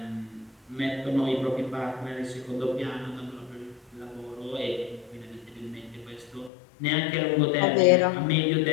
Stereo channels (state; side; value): drops out; right; at 6.5 s